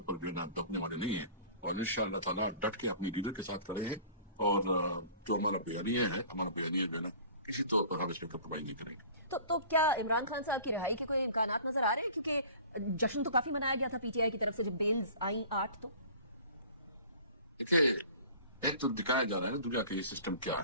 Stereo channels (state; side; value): inverted; both; correlation -0.45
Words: पर जो है ना दबने वाले नहीं है और इंशाअल्लाह ताला डट के अपने लीडर के साथ खड़े हैं. और जो हमारा बयानिया है, हमारा बयानिया जो है ना किसी तौर पर हम इसमें कम्प्रोमाइज नहीं करेंगे. तो क्या इमरान खान साहब की रिहाई के कोई इम्कानात नजर आ रहे हैं? क्योंकि जश्न तो काफी मनाया गया था पीटीआई की तरफ से जब बेल्स आई 8. तो देखिए, एक तो दिखाया जा रहा है ना दुनिया का ये सिस्टम क्या